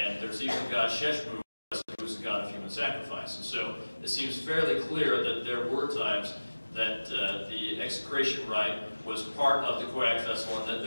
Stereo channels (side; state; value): both; inverted; correlation -1.00